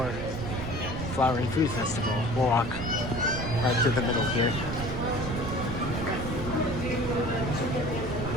Flower and Food Festival. We'll walk right through the middle here.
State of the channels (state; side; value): noise; right; rumble, 6 dB below the sound